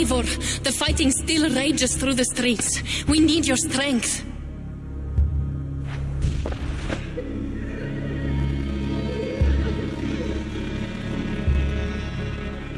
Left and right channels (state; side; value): identical; both; correlation 1.00